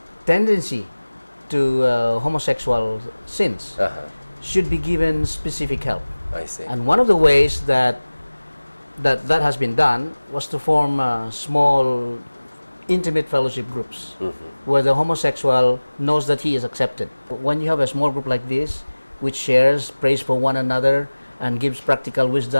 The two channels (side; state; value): both; inverted; correlation -1.00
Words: tendency to homosexual sins should be given specific help. I see. And one of the ways that has been done was to form small, intimate fellowship groups where the homosexual knows that he is accepted. When you have a small group like this, which shares, prays for one another, and gives practical